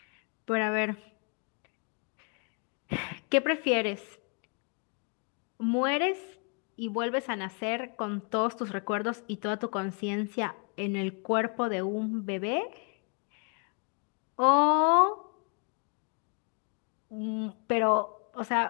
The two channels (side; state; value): right; quieter; 39.0 dB